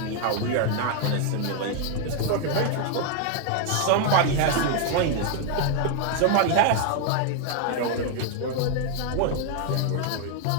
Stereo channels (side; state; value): both; different; correlation 0.00